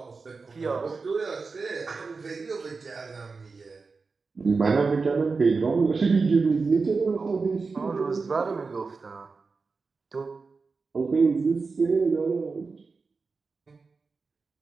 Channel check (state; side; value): quieter; left; 4.4 dB